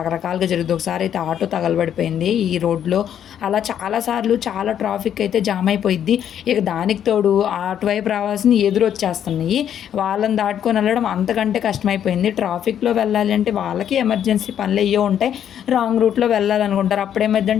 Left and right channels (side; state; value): right; quieter; 9.6 dB